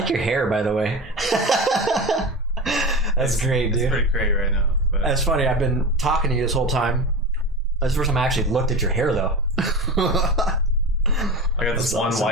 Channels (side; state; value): both; normal; correlation 0.26